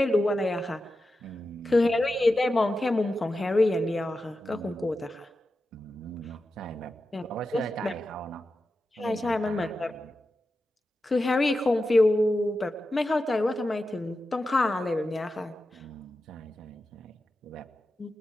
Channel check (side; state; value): both; normal; correlation 0.91